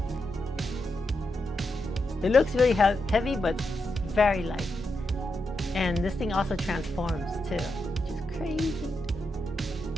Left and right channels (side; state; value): both; normal; correlation 0.85